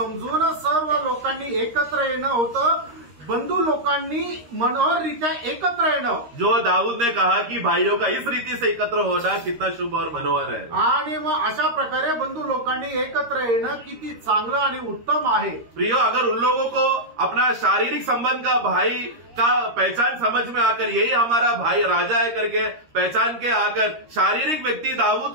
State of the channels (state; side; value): late; left; 13 ms